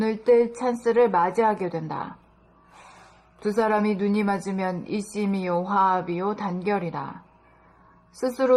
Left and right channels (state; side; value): identical; both; correlation 1.00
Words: 뜰 찬스를 맞이하게 된다. 두 사람이 눈이 맞으면 일심이요 화합이요 단결이다.